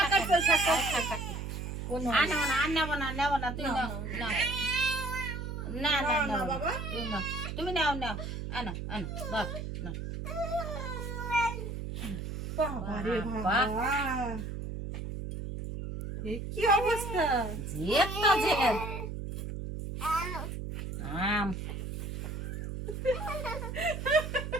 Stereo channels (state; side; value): noise; right; hum, 5 dB below the sound